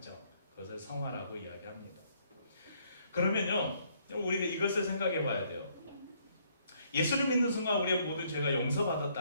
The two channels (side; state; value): both; inverted; correlation -0.68